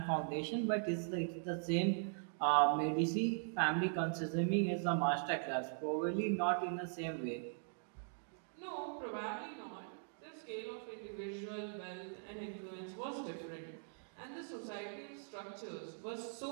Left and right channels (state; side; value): silent; left; digital silence